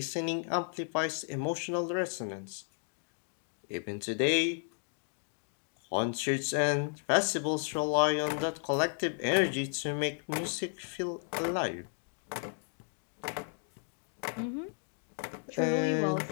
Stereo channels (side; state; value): right; silent; 55 dB below the other